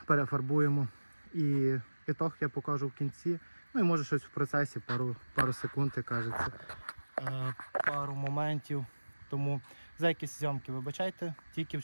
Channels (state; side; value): inverted; both; correlation -1.00